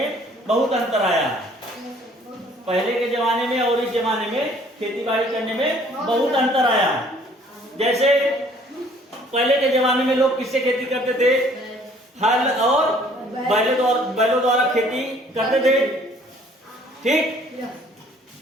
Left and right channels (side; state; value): both; normal; correlation 0.58